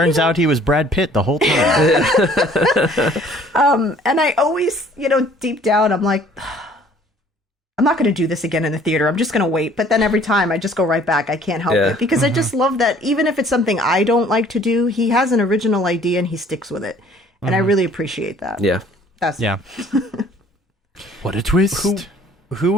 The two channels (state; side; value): normal; both; correlation 0.56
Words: out he was Brad Pitt the whole time. and I always, deep down, I'm like, I'm not going to do this again in the theater. I'm just going to wait. But then every time I just go right back. I can't help it because I just love that even if it's something I don't like to do, he has an original idea and he sticks with it. And I really appreciate that. Yeah. Yeah. What a twist. Who